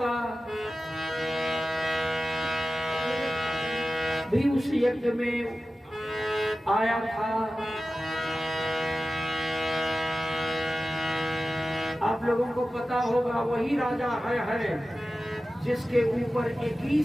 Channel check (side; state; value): both; normal; correlation 0.95